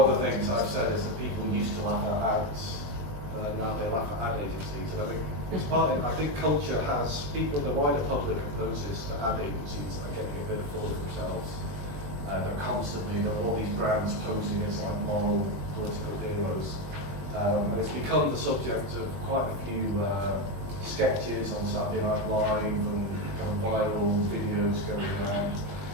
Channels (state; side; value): late; left; 21 ms